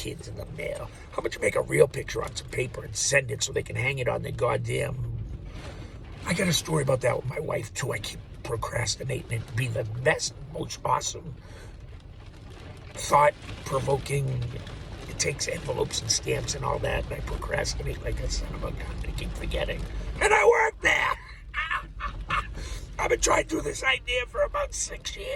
in the mail. How about you make a real picture on some paper and send it so they can hang it on their goddamn... I got a story about that with my wife, too. I keep procrastinating it to be the best, most awesome, thought-provoking... It takes envelopes and stamps and all that, and I procrastinate like a son of a gun. I keep forgetting. And I work there! I've been trying to do this idea for about 6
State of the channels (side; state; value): both; identical; correlation 1.00